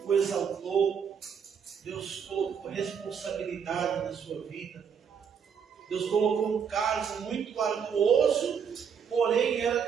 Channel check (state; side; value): quieter; left; 7.1 dB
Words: o exaltou, Deus colocou responsabilidade na sua vida, Deus colocou um cargo muito arduoso, porém era